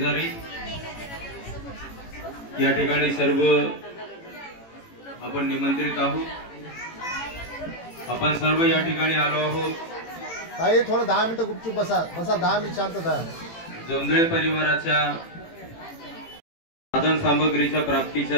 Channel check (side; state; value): right; late; 18 ms